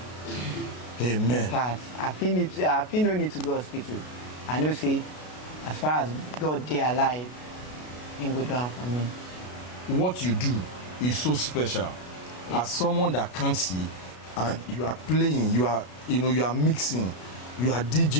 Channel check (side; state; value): right; late; 33 ms